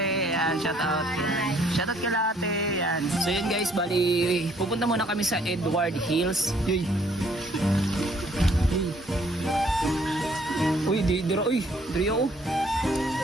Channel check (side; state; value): both; normal; correlation 0.63